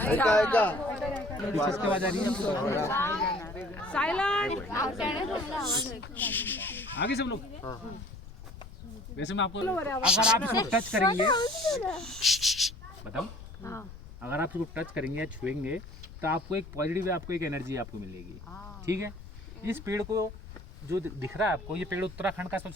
ऐका ऐका किसके आवाज आ रही है? आगे सब लोग. वैसे मैं आपको अगर आप इसको टच करेंगे, बताओ, अगर आप इसको टच करेंगे या छुएंगे तो आपको एक पॉजिटिव, आपको एक एनर्जी आपको मिलेगी. ठीक है. इस पेड़ को जो दिख रहा है आपको, ये पेड़ उत्तराखंड का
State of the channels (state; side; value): noise; left; rumble, 15 dB below the sound